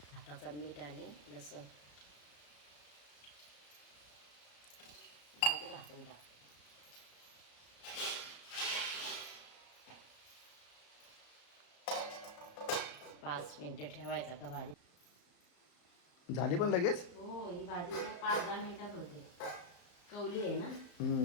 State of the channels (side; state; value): right; late; 34 ms